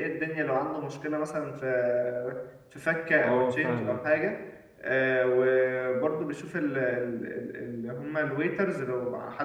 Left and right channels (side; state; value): both; identical; correlation 1.00